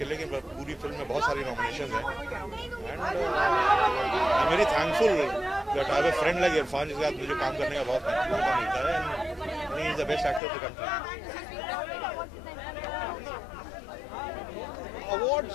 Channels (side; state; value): right; drops out; at 10.4 s